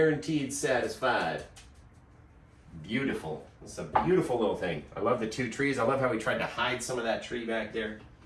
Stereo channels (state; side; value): identical; both; correlation 1.00